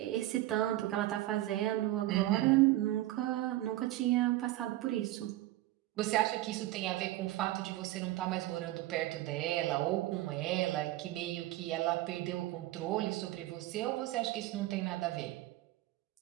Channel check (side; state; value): left; quieter; 16.2 dB